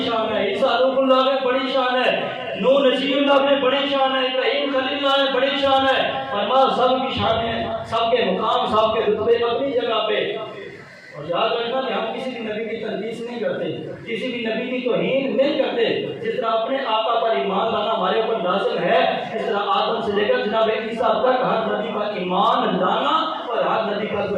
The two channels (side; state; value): both; identical; correlation 1.00